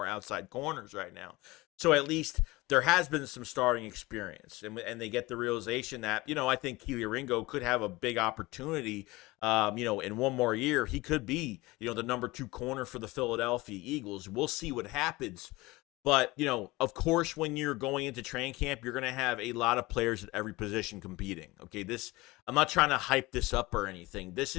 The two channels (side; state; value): right; quieter; 21.2 dB